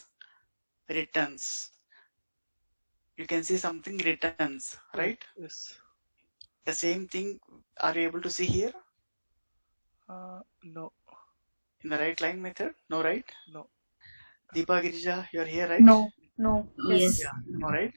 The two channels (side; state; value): both; inverted; correlation -1.00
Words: You can see something returns, right? Yes. The same thing, are you able to see here? No. In the WriteLine method? No, right? No. Deepa Girija, you're here, right? No, no. Yes. Yeah, no, right?